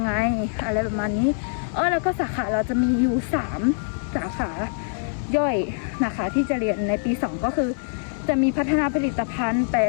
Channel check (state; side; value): silent; right; digital silence